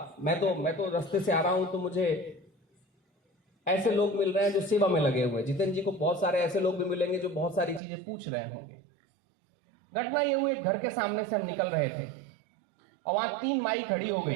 तो रास्ते से आ रहा हूं तो मुझे ऐसे लोग मिल रहे हैं जो सेवा में लगे हुए हैं। जितेंद्र जी को बहुत सारे ऐसे लोग भी मिलेंगे जो बहुत सारी चीजें पूछ रहे होंगे। घटना ये हुई, घर के सामने से हम निकल रहे थे और वहां 3 माई खड़ी हो गई।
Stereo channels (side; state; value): left; drops out; at 7.8 s